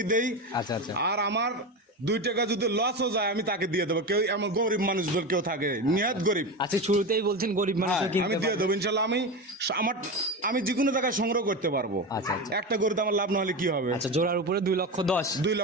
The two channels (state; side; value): normal; both; correlation 0.21